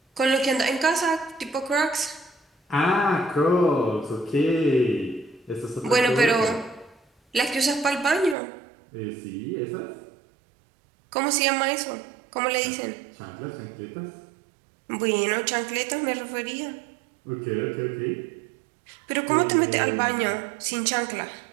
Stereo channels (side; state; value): left; drops out; at 8.3 s